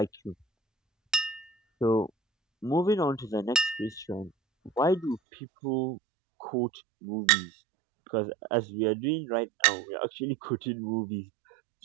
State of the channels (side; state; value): left; drops out; at 5.2 s